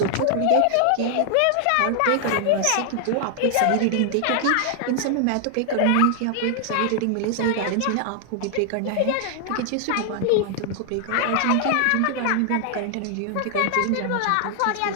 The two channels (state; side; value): different; both; correlation 0.00